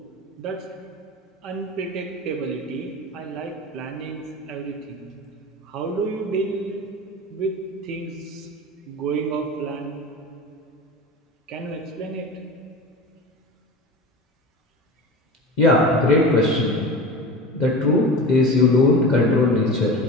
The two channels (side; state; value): both; normal; correlation 0.31